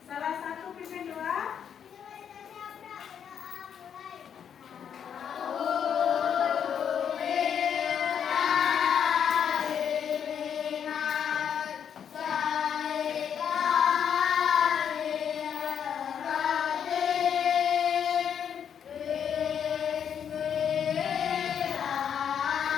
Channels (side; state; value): right; quieter; 8.2 dB